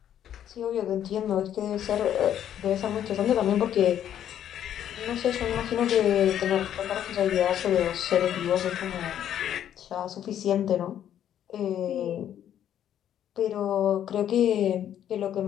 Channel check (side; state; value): right; quieter; 10.4 dB